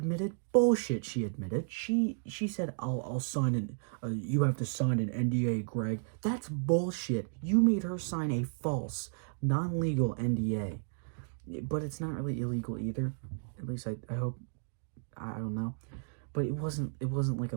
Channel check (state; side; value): silent; left; digital silence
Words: bullshit. She admitted. She said, I'll sign an you have to sign an NDA, Greg. That's bullshit. You made her sign a false, non-legal NDA. But it's not really illegal either. At least I hope. I don't know, but it wasn't like a